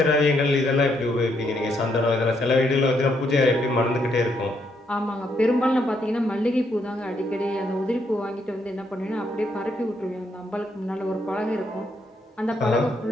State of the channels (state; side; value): normal; both; correlation 0.75